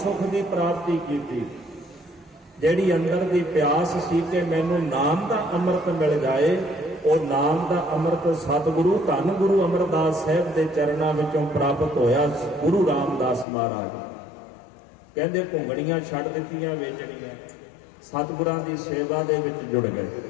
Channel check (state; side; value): drops out; right; at 13.5 s